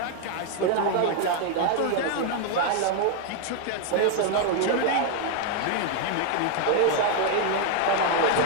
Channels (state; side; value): different; both; correlation 0.00